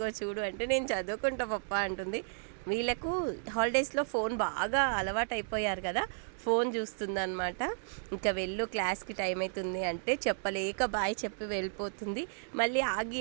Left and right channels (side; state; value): left; silent; digital silence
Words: చూడు అంటే, నేను చదువుకుంటా పప్ప అంటుంది. వీళ్ళకు హాలిడేస్లో ఫోన్ బాగా అలవాటు అయిపోయారు కదా, ఫోన్ చూస్తుందన్నమాట. ఇంకా వెళ్ళు క్లాస్కి టైం అవుతుంది అంటే చెప్పలేక బాయ్ చెప్పి వెళ్ళిపోతుంది. మళ్ళీ ఆగి